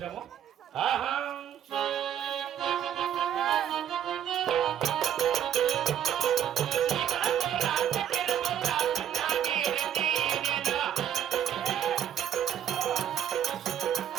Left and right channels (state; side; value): quieter; left; 9.7 dB